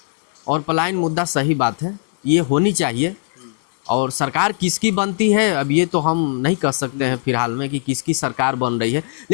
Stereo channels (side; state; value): right; silent; digital silence